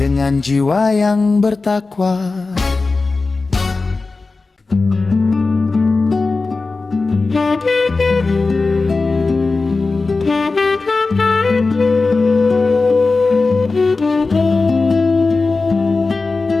jiwa yang bertakwa.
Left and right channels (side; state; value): right; quieter; 3.8 dB